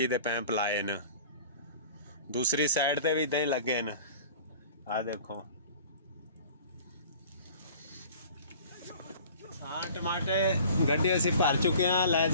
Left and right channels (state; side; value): inverted; both; correlation -0.45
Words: ਦੇ ਪੈਂਪ ਲਾਏ ਨੇ। ਦੂਸਰੀ ਸਾਈਡ ਤੇ ਵੀ ਇਦਾਂ ਹੀ ਲੱਗੇ ਨੇ। ਆ ਦੇਖੋ ਹਾਂ ਟਮਾਟੇ ਗੱਡੀ ਅਸੀਂ ਭਰ ਚੁੱਕੇ ਹਾਂ, ਲੈ